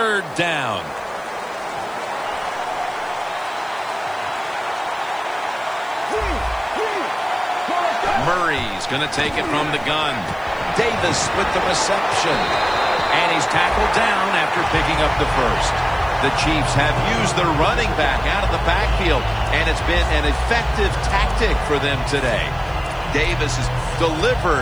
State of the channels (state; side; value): noise; left; hiss, 30 dB below the sound